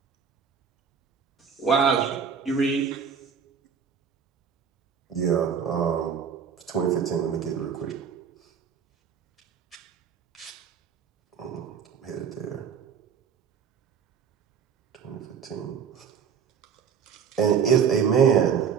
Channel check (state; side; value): quieter; left; 7.0 dB